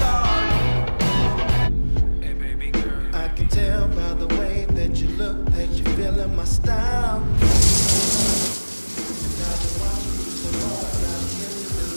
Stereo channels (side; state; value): both; inverted; correlation -1.00